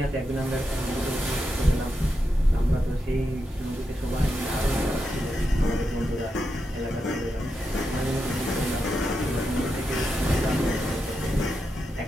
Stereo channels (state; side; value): normal; both; correlation 0.86